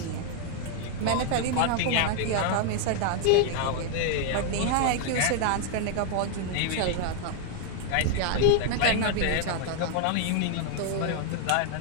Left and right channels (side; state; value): both; different; correlation 0.00